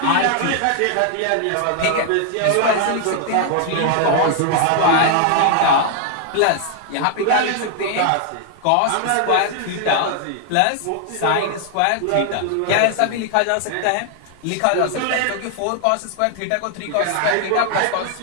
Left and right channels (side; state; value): both; different; correlation 0.00